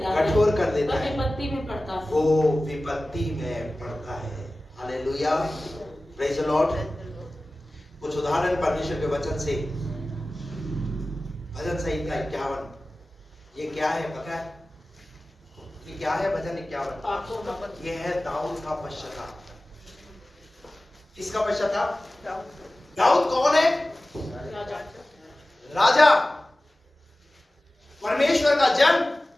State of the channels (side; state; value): both; normal; correlation 0.97